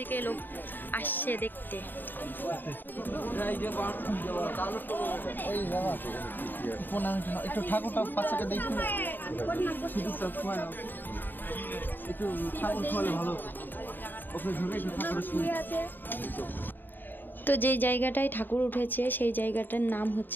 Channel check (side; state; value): right; late; 0.092 ms